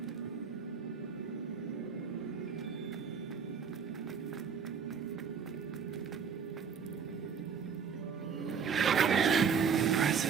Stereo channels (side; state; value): left; quieter; 6.4 dB